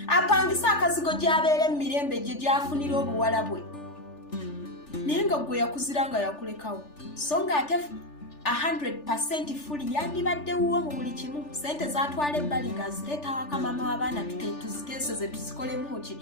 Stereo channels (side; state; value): right; late; 3.4 ms